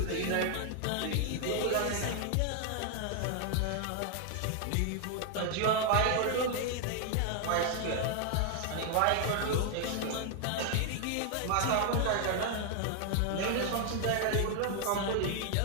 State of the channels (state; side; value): different; both; correlation 0.00